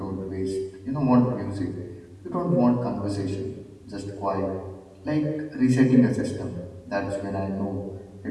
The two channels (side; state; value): both; identical; correlation 1.00